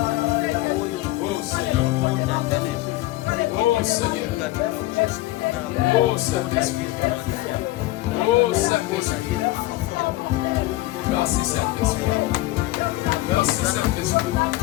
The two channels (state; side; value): quieter; right; 17.7 dB